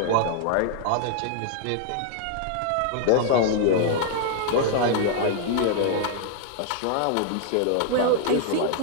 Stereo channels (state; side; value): different; both; correlation -0.01